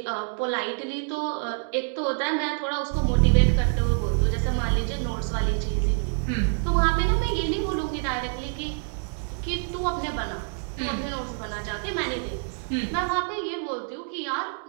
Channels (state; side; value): silent; left; 59 dB below the other